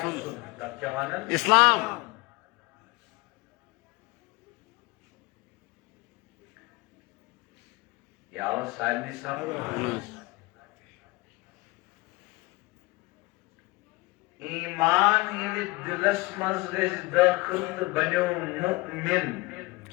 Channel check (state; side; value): quieter; right; 23.4 dB